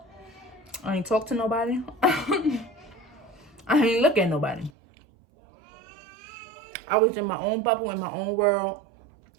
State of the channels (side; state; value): left; drops out; at 4.7 s